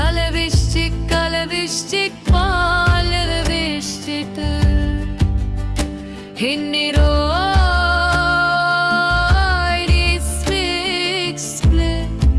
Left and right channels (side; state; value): both; identical; correlation 1.00